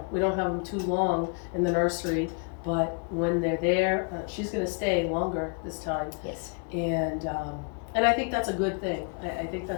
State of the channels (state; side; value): quieter; right; 37.8 dB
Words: don't have them too long in the nursery, but when they're there, she's going to stay longer this time. Yes. And I think that's a good thing. I think